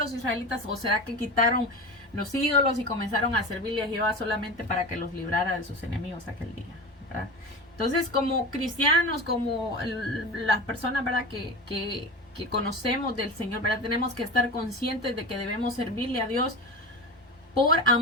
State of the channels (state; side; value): normal; both; correlation 0.28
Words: israelitas? ¿O será que quitaron los ídolos y comenzaron a servirle a Jehová solamente para que los librara de sus enemigos aquel día, ¿verdad? Entonces, como cristianos, como las personas, ¿verdad?, que conocemos del Señor, ¿verdad?, tenemos que estar conscientes de que debemos servirle a Dios por